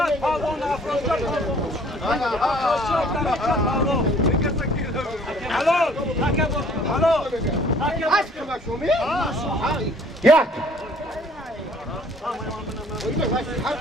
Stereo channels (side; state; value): both; normal; correlation 0.56